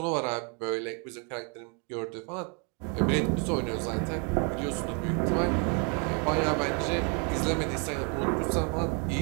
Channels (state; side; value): quieter; left; 35.8 dB